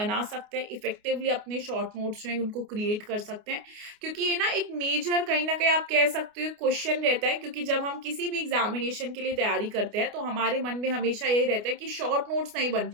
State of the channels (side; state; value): left; late; 29 ms